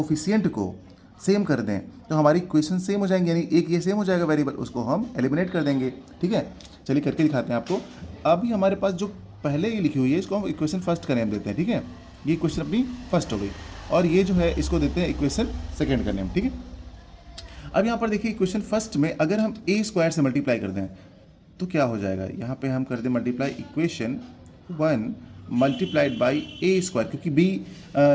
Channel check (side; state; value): both; identical; correlation 1.00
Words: को सेम कर दें तो हमारी इक्वेशन सेम हो जाएंगे, यानी एक ये सेम हो जाएगा वेरिएबल, उसको हम एलिमिनेट कर देंगे। ठीक है, चलिए करके दिखाते हैं आपको। अभी हमारे पास जो पहले ये लिखी हुई है इसको हम इक्वेशन फर्स्ट का नेम देते हैं। ठीक है, ये इक्वेशन अपनी फर्स्ट हो गई और ये जो है इसको देते हैं इक्वेशन सेकेंड का नेम। ठीक है, अब यहाँ पर देखिए इक्वेशन फर्स्ट में अगर हम a स्क्वायर से मल्टीप्लाई कर दें तो क्या हो जाएगा। यहाँ पे हम कर दें multiply equation 1 multiplied by a square, क्योंकि